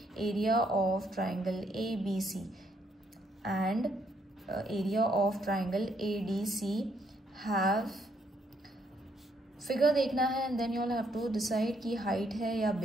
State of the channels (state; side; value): normal; both; correlation 0.72